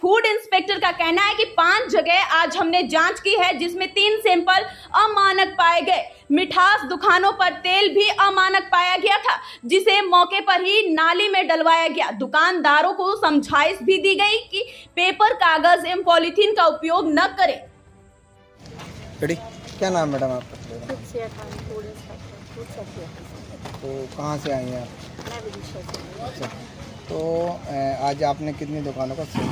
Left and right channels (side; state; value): both; identical; correlation 1.00